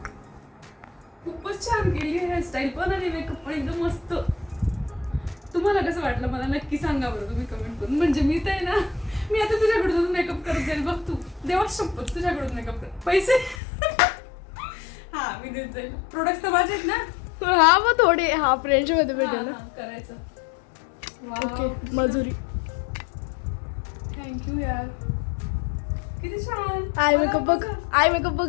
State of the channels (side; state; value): right; drops out; at 13.6 s